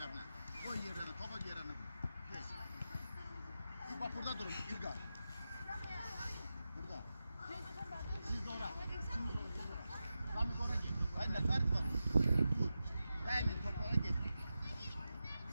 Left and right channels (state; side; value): inverted; both; correlation -0.91